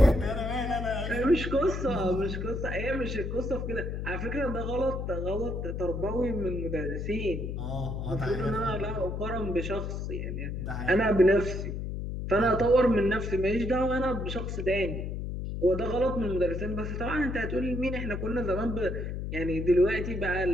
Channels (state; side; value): noise; left; hum, 4 dB below the sound